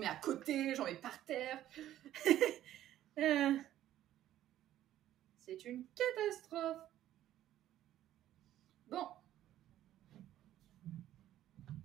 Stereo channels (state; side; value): quieter; left; 12.8 dB